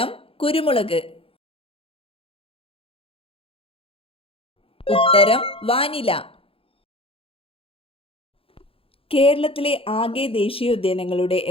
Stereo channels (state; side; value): late; right; 0.27 ms